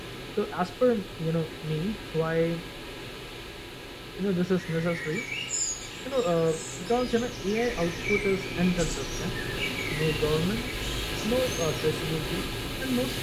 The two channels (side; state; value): both; identical; correlation 1.00